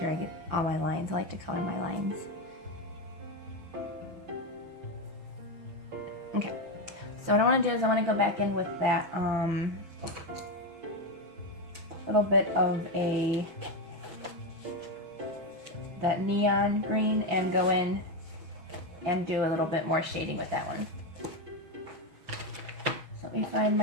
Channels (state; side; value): late; left; 6.2 ms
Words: I get all my lines. I like to color my lines. Okay, so what I want to do is I want to go back in with that little bit of that neon green, and go in and do a little bit more shading with that one. So let me find